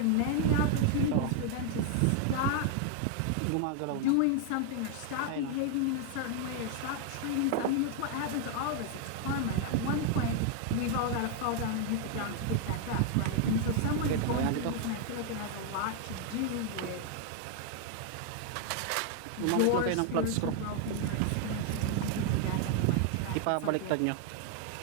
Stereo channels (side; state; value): both; different; correlation 0.00